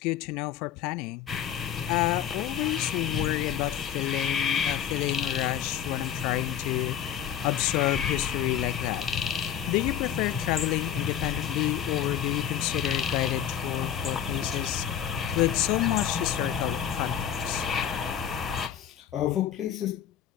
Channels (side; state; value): right; quieter; 9.6 dB